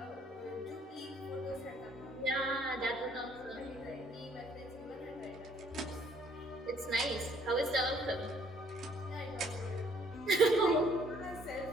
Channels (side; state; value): both; normal; correlation 0.63